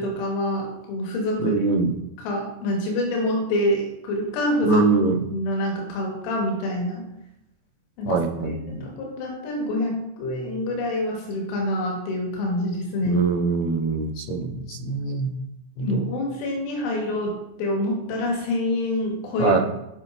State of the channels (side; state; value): right; late; 24 ms